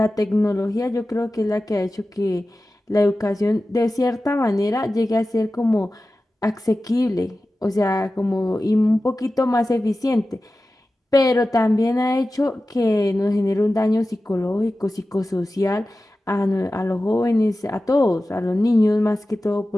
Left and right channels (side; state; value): both; normal; correlation 0.95